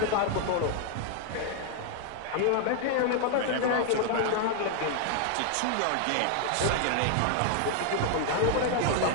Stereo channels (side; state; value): both; different; correlation 0.00